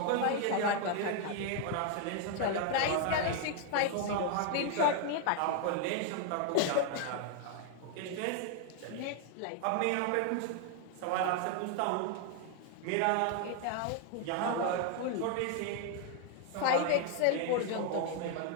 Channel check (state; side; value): different; both; correlation 0.00